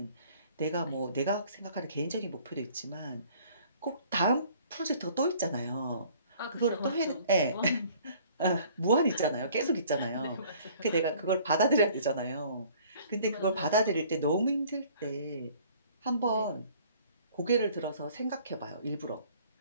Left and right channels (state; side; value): inverted; both; correlation -0.55